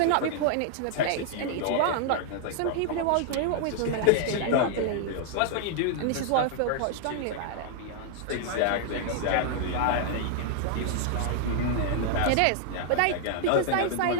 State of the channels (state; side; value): different; both; correlation 0.00